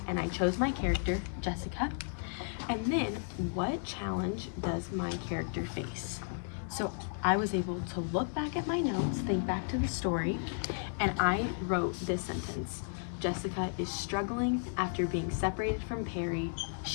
and I chose my character, Jessica. And then, what challenge does my character face? So I was able to look back at my notes, think back to the story, and I wrote this sentence. Jessica is struggling after being separated from Perry.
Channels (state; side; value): silent; right; digital silence